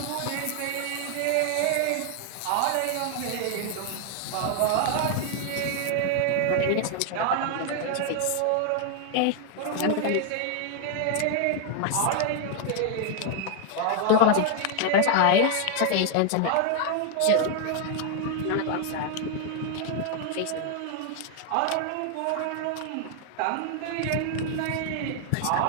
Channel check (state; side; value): different; both; correlation 0.00